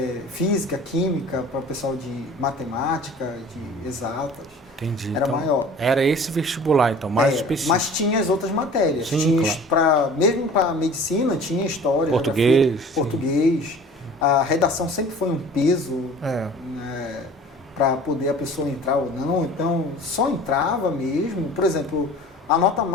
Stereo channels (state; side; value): normal; both; correlation 0.44